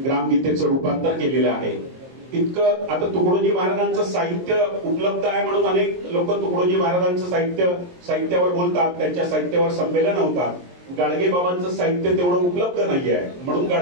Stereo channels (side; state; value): left; late; 23 ms